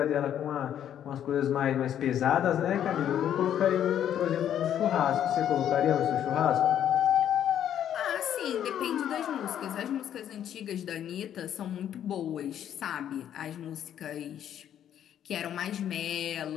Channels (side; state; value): right; quieter; 10.1 dB